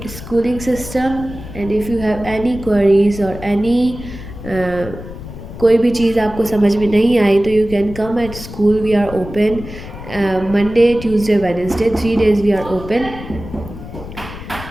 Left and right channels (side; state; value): left; noise; rumble, 12 dB below the sound